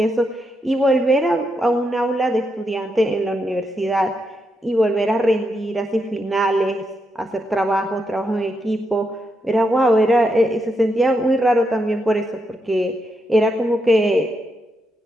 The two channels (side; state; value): both; normal; correlation 0.82